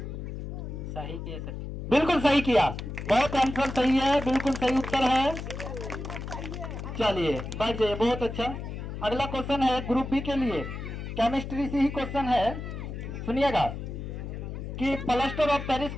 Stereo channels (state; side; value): noise; left; hum, 7 dB below the sound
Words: सही किए सर। बिल्कुल सही किया, बहुत आंसर सही है, बिल्कुल सही उत्तर है। चलिए बैठ जाइए, बहुत अच्छा। अगला क्वेश्चन है ग्रुप बी के लिए, केमिस्ट्री से ही क्वेश्चन है। सुनिएगा कि प्लास्टर ऑफ पेरिस